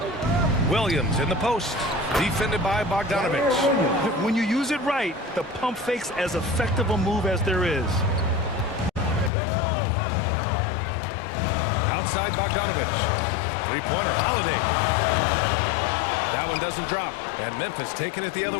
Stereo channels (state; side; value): drops out; right; at 9.3 s